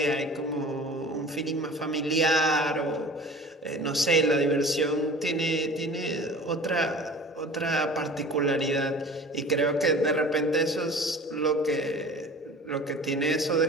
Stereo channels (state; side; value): normal; both; correlation 0.41